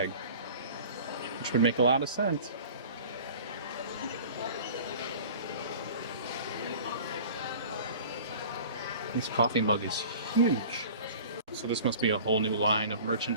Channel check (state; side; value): inverted; both; correlation -0.43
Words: which would make a lot of sense. This coffee mug is huge. So this must be a whole new line of